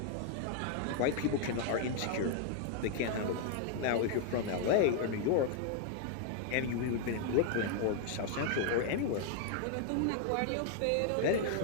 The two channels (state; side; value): different; both; correlation 0.00